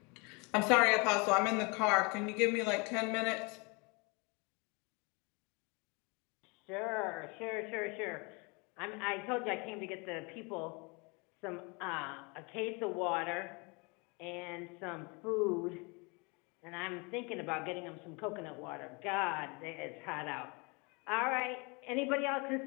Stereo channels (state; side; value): quieter; right; 30.0 dB